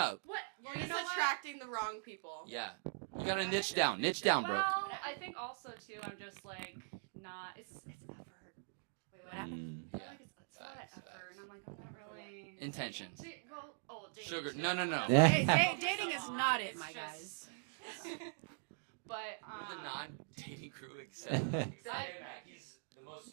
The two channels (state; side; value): silent; left; digital silence